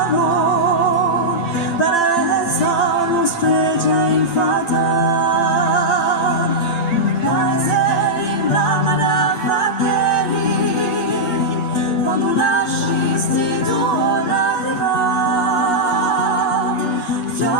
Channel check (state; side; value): late; right; 8.9 ms